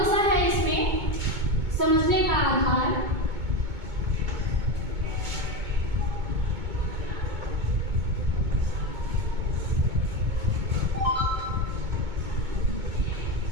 सा है इसमें समझने का आधार?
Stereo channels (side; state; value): left; late; 2.2 ms